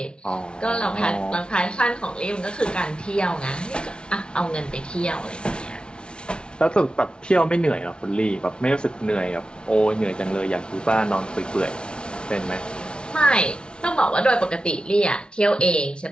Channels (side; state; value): right; late; 0.055 ms